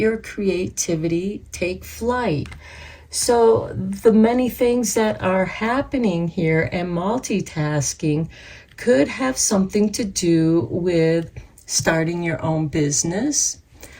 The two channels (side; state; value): both; identical; correlation 1.00